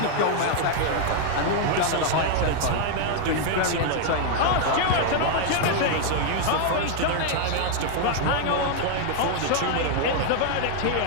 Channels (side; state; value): both; different; correlation 0.00